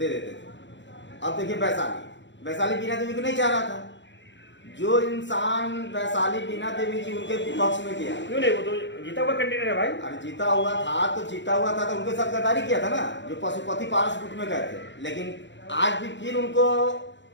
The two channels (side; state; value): right; late; 0.53 ms